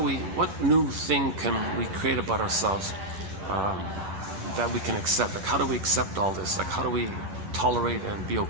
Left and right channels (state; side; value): late; left; 10 ms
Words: what new thing can we create about ourselves that we can accept? Like, how do we accept all this? Like, how do we tolerate and be